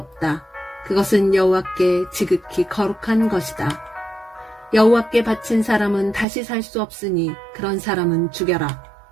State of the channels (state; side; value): drops out; left; at 6.2 s